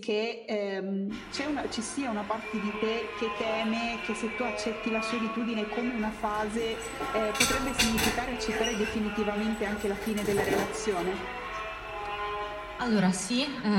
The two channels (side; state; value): both; identical; correlation 1.00